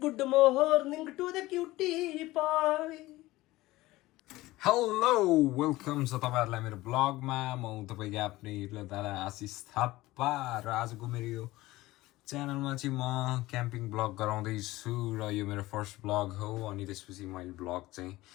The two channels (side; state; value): right; quieter; 18.4 dB